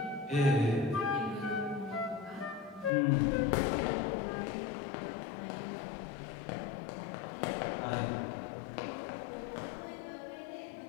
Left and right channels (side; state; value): right; drops out; at 2.9 s